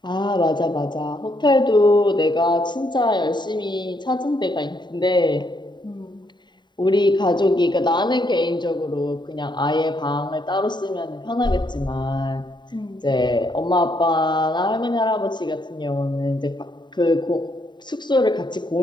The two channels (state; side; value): late; right; 0.22 ms